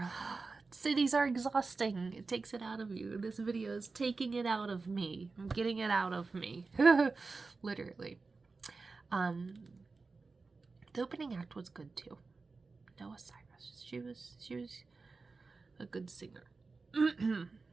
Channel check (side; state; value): left; quieter; 4.1 dB